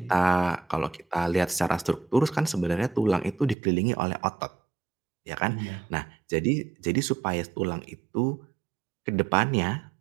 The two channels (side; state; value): left; drops out; at 3.6 s